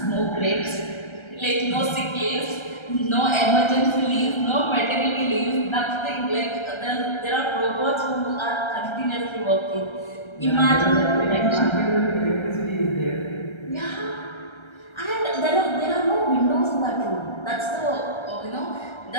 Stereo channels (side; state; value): right; late; 1.3 ms